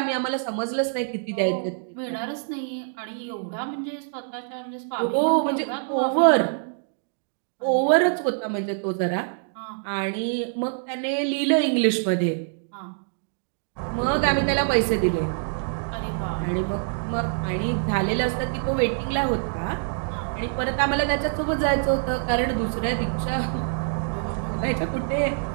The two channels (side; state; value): left; silent; digital silence